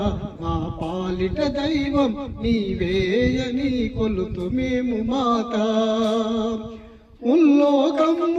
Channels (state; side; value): identical; both; correlation 1.00